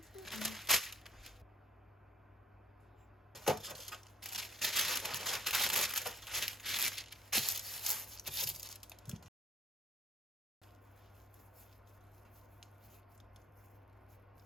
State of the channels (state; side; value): normal; both; correlation 0.57